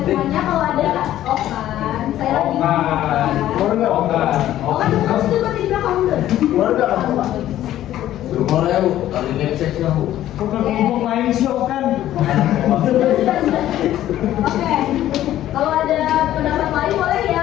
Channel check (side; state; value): right; quieter; 13.0 dB